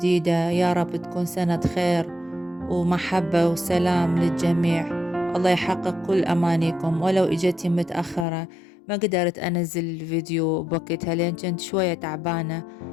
يا رب تكون سنة خير ومحبة وسلام للجميع. الله يحقق كل أمانيكم. ولو إجتي متأخرة ما قدرت أنزل الفيديو بوقتها لأن كنت شوية تعبانة،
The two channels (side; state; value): right; drops out; at 8.2 s